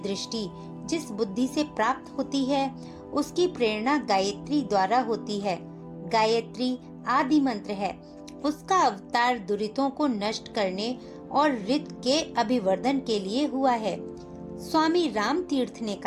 जिस बुद्धि से प्राप्त होती है, उसकी प्रेरणा गायत्री द्वारा होती है। गायत्री आदि मंत्र है। उसका अवतार दुरितों को नष्ट करने और रित के अभिवर्धन के लिए हुआ है। स्वामी राम तीर्थ ने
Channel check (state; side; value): identical; both; correlation 1.00